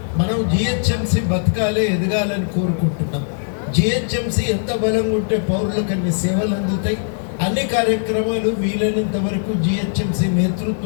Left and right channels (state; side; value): silent; right; digital silence